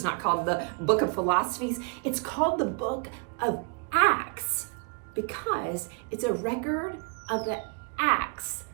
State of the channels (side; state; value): left; quieter; 36.1 dB